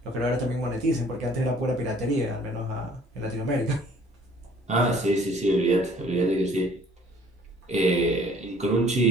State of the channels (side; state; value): both; normal; correlation 0.56